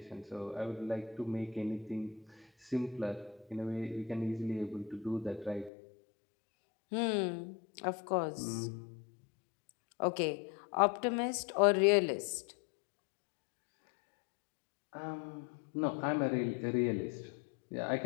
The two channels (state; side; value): drops out; right; at 5.7 s